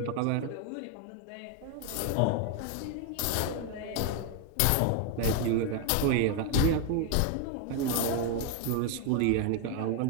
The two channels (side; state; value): both; different; correlation 0.01